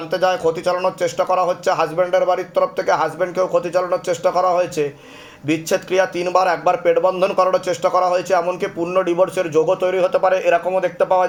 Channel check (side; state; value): both; identical; correlation 1.00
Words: যায়, ক্ষতি চালানোর চেষ্টা করা হচ্ছে। হাজব্যান্ডের বাড়ির তরফ থেকে হাজব্যান্ডকেও ক্ষতি চালানোর চেষ্টা করা হয়েছে। বিচ্ছেদ ক্রিয়া 3 বার, একবার পেট বন্ধন করার চেষ্টা করা হয়েছে, এমনকি পূর্ণ ডিভোর্সের যোগও তৈরি হতে পারে, এরকমও দেখতে পাওয়া